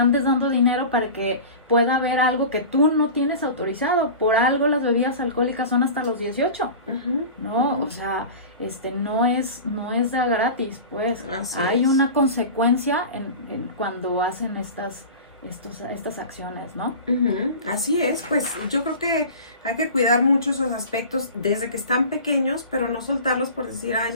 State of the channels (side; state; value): both; inverted; correlation -0.34